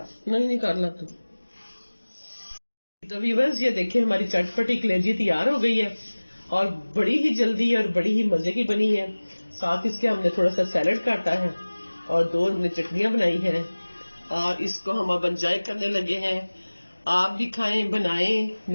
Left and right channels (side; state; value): both; inverted; correlation -1.00